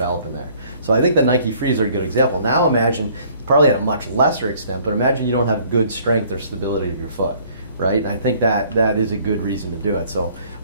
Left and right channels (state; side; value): inverted; both; correlation -0.58